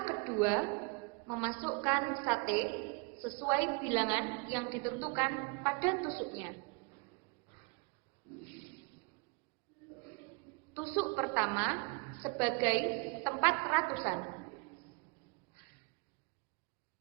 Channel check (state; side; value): quieter; left; 30.0 dB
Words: kedua, memasukkan sate sesuai bilangan yang ditentukan pada tusuknya. Tusuk pertama sebagai tempat ratusan.